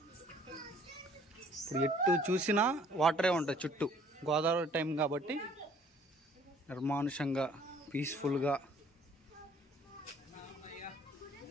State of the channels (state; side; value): normal; both; correlation 0.58